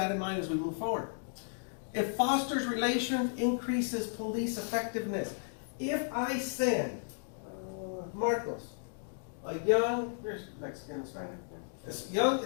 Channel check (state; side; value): silent; right; digital silence